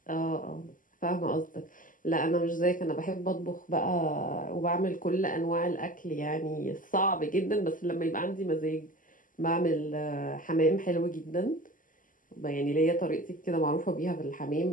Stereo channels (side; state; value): right; late; 0.39 ms